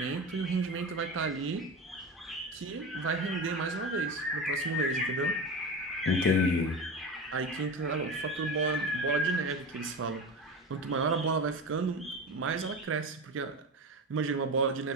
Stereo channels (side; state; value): both; normal; correlation 0.25